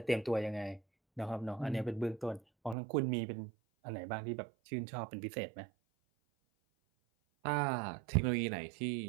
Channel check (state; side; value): drops out; left; at 2.8 s